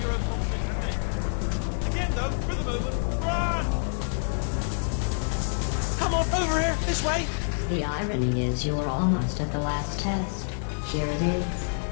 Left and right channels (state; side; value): silent; right; digital silence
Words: and again, though, for the moment, run! Come on, over here, this way! The irony is you were almost at the last test. Here it is.